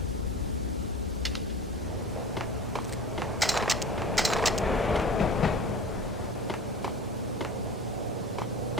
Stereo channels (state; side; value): normal; both; correlation 0.37